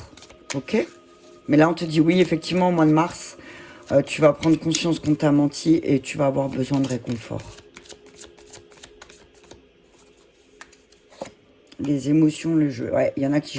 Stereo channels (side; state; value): both; identical; correlation 1.00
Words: Ok? Mais là, on te dit oui, effectivement, au mois de mars, tu vas prendre conscience qu'on t'a menti et tu vas avoir besoin de réconfort. Les émotions, le jeu. Ouais, il y en a qui